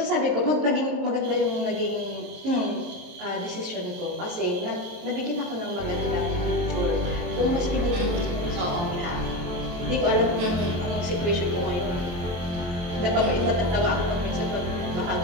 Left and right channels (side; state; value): left; late; 23 ms